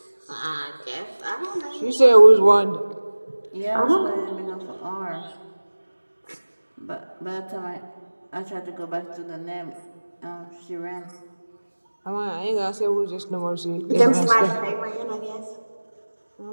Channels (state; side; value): inverted; both; correlation -1.00